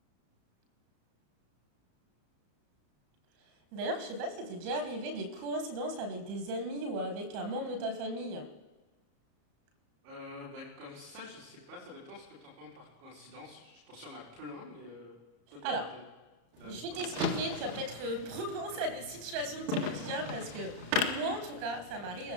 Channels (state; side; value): late; left; 34 ms